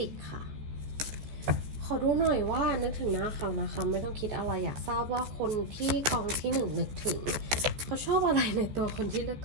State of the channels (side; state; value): left; late; 14 ms